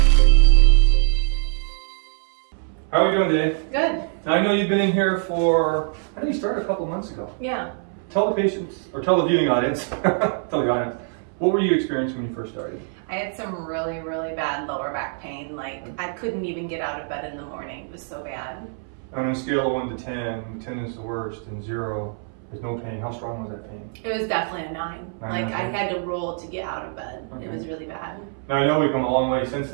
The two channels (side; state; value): left; silent; 61 dB below the other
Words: How are we doing today? Good. Now I know you've been in here for, I think you started a couple months ago. Yeah. Tell the patients, or tell the viewing audience, tell the audience, what were you experiencing when you first started? I had some really, really bad lower back pain. Like, I couldn't even get out of bed in the morning. It was so bad. On a scale of 1 to 10, 10 is the worst and 0 is no pain. How strong was that pain? It was definitely a 9. Like, I had to roll to get out of bed. Okay. It was really bad. Now I know we've come a long way since